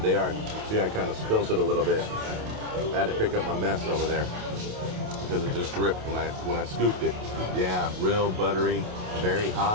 are. See, I kind of spilled it a little bit. I had to pick up my mess over there because it just dripped when I scooped it. Yeah, real buttery, very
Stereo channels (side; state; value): left; late; 28 ms